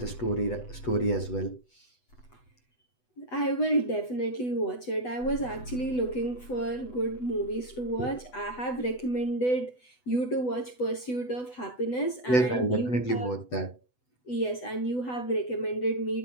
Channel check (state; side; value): late; right; 8.0 ms